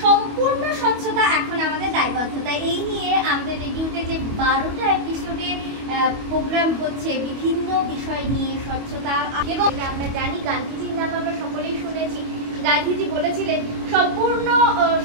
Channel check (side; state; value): left; late; 25 ms